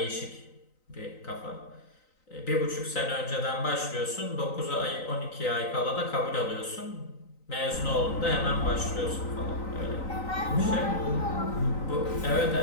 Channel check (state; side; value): late; right; 3.9 ms